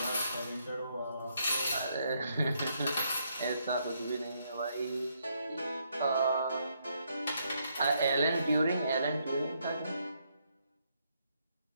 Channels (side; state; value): both; inverted; correlation -0.75